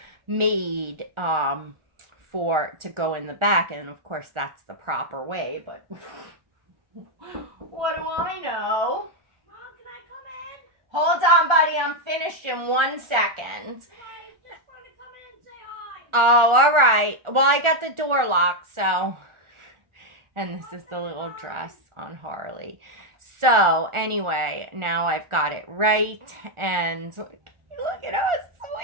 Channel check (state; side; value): late; left; 1.4 ms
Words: made to go in the back, and of course, that's the proper way, but... What do I know? Mom, can I come in? Hold on, buddy. I'm finished in 1 second. I just want to come in and say hi. Oh, all right. Well, I got the door locked, so... And this is the little dress on Harley. So, anyway, now I've got it right. And look at how